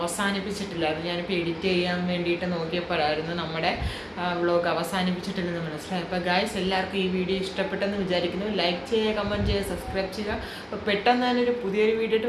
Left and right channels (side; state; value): both; identical; correlation 1.00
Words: ഞാനിപ്പോൾ എഡിറ്റ് ചെയ്യാൻ വേണ്ടിയിട്ട് നോക്കിയപ്പോഴായിരുന്നു നമ്മുടെ വ്ളോഗ് അവസാനിപ്പിച്ചിട്ടില്ലെന്ന് മനസ്സിലായി. അപ്പോൾ ഗൈസ് എല്ലാവർക്കും ഈ വീഡിയോ ഇഷ്ടപ്പെട്ടെന്ന് വിചാരിക്കുന്നു. ലൈക്ക് ചെയ്യുക, കമൻറ്റ് ചെയ്യുക, സബ്സ്ക്രൈബ് ചെയ്യുക. അപ്പോൾ പെട്ടെന്ന് തന്നെ ഒരു പുതിയൊരു വീഡിയോ ഇട്ട്